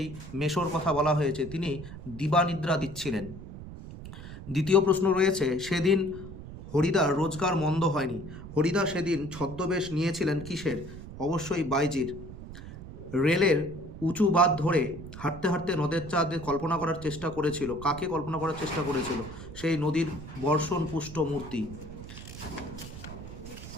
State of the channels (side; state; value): right; noise; rumble, 12 dB below the sound